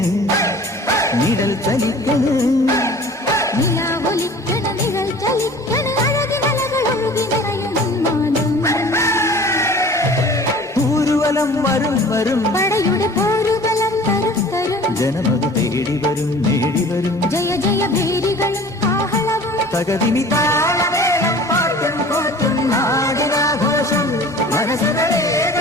നിഴൽ ചലിക്കണ് നിഴൽ ചലിക്കണ് അഴകിമലകളൊഴുകി നിറയും ഊരുവലം വരും വരും പടയുടെ പോരുബലം തരും തരും ജനമത് തേടി വരും നേടി വരും ജയ ജയ ഭേരികളും ആഹളവും തകതിനി താളമേളം പാട്ടും കൂട്ടും നാടിനാഘോഷം മനസ്സുകളെ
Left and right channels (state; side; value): normal; both; correlation 0.45